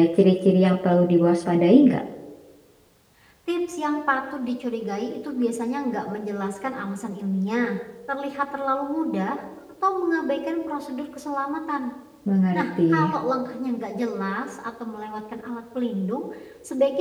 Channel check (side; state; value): both; identical; correlation 1.00